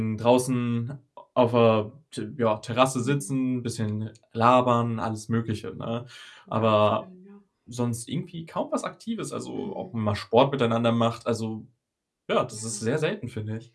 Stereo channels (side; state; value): both; identical; correlation 1.00